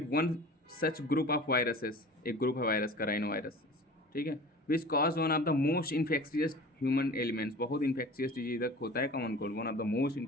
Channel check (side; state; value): both; normal; correlation 0.40